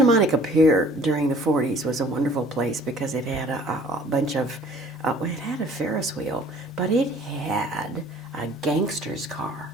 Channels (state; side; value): normal; both; correlation 0.52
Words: Monica Pier during the 40s was a wonderful place because it had a bunch of, it had a Ferris wheel, but it had a gangster's car.